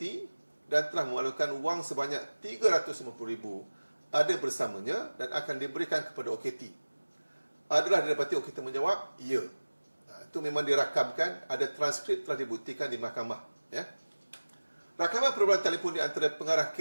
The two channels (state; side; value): inverted; both; correlation -1.00